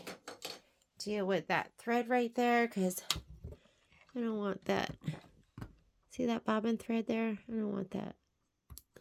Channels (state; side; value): identical; both; correlation 1.00